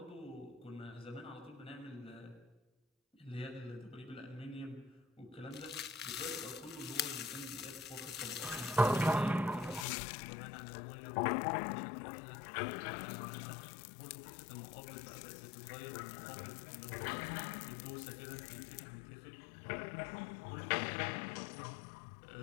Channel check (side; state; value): right; drops out; at 9.9 s